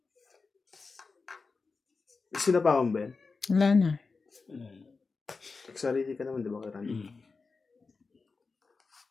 Sino pa akong Ben? Wala na. Nagsarili ka naman, di ba, kay Randy?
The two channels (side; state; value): right; quieter; 4.3 dB